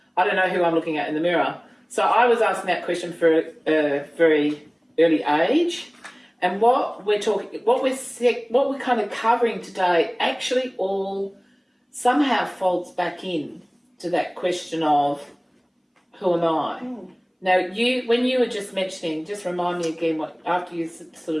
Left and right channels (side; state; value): both; identical; correlation 1.00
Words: I don't know who I'm looking at in the mirror. So I was asking that question for a very early age. And what we're kind of covering today actually all somehow folds back in to that question of who am I? Now, when you were just mentioning, just remind me again after you